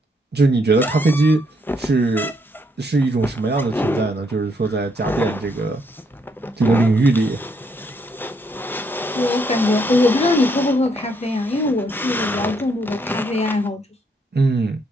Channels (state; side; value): normal; both; correlation 0.73